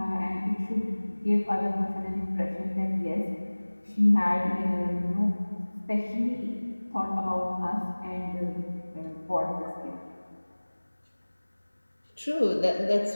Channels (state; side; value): inverted; both; correlation -1.00